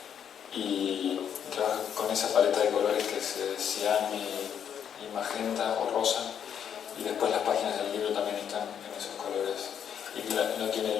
y trabaja con esa paleta de colores que es cian y magenta o rosa, y después las páginas del libro también están en esos colores. Y no tiene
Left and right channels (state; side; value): quieter; right; 8.5 dB